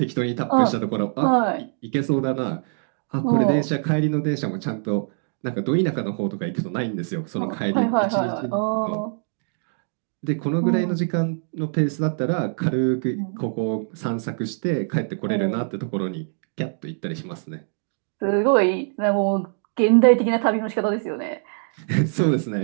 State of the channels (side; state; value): left; silent; 62 dB below the other